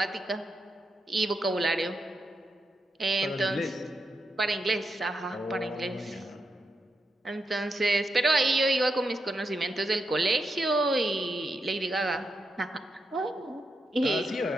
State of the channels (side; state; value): both; normal; correlation 0.84